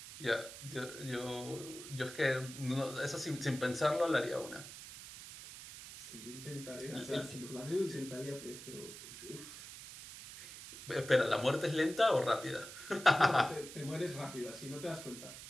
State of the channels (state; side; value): noise; right; hiss, 13 dB below the sound